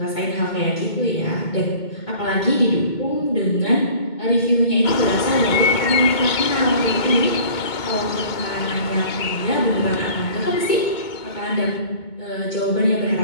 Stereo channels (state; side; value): late; right; 2.2 ms